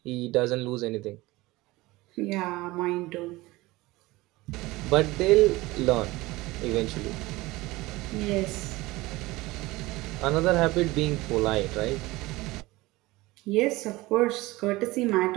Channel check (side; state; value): left; quieter; 20.2 dB